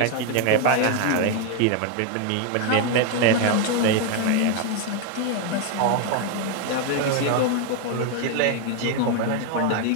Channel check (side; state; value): both; different; correlation 0.01